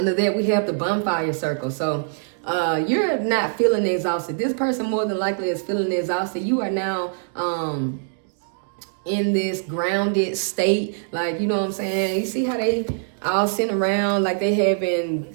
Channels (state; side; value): silent; left; digital silence